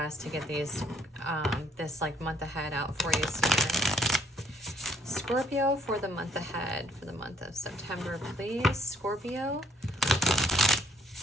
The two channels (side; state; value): both; normal; correlation 0.64